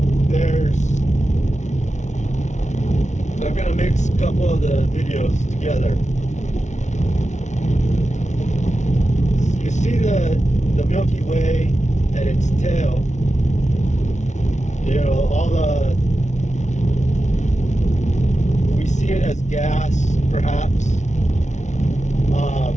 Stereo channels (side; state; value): right; late; 0.34 ms